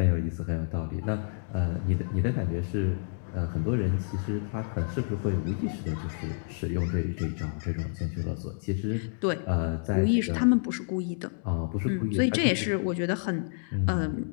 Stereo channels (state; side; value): silent; right; digital silence